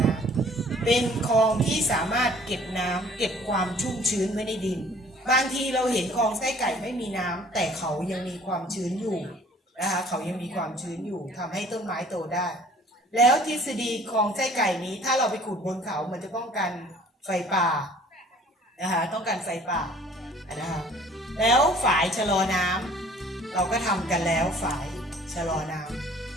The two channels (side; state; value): both; normal; correlation 0.53